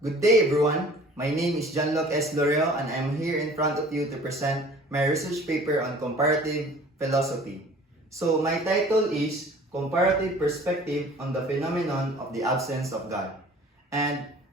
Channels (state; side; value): normal; both; correlation 0.48